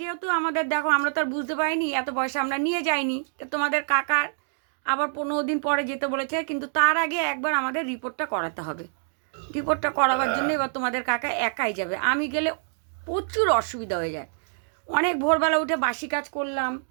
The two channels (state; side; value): silent; left; digital silence